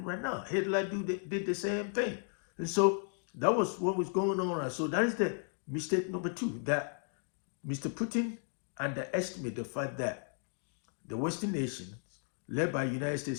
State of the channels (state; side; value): silent; right; 55 dB below the other